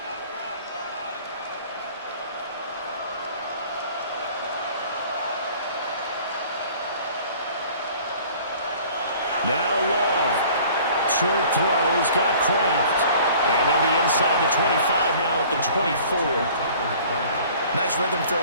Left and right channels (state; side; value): inverted; both; correlation -0.50